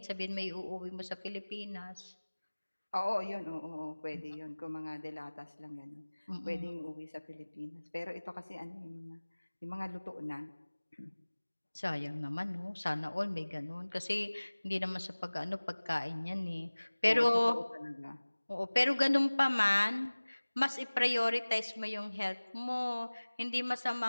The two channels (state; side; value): inverted; both; correlation -1.00